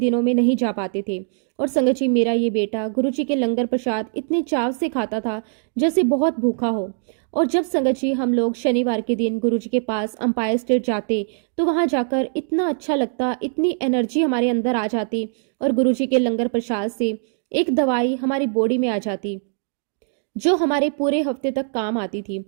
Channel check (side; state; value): left; silent; 64 dB below the other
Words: में नहीं जा पाते थे। और संगत जी मेरा ये बेटा गुरुजी के लंगर प्रसाद इतने चाव से खाता था जैसे बहुत भूखा हो। और जब संगत जी हम लोग शनिवार के दिन गुरुजी के पास अंपायर स्टेट जाते तो वहां जाकर इतना अच्छा लगता, इतनी एनर्जी हमारे अंदर आ जाती और गुरुजी के लंगर प्रसाद से एक दवाई हमारी बॉडी में आ जाती जो हमारे पूरे हफ्ते तक काम आती थी।